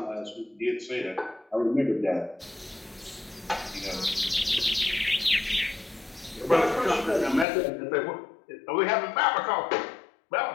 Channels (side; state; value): right; drops out; at 7.5 s